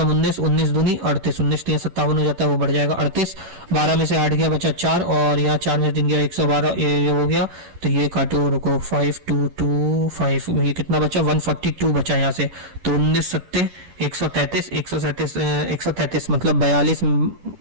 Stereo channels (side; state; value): left; late; 10 ms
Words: 19, 19 दूनी 38, 19 3 57 हो जाता है, वो बढ़ जाएगा 38, 12 में से 8 गया बचा 4, और यहाँ 4 में से 3 गया 112, ये हो गया, तो ये काटो, रुको 5225, ये कितना बचा 142 बचा यहाँ से, तो 19 सत्ते 133 मतलब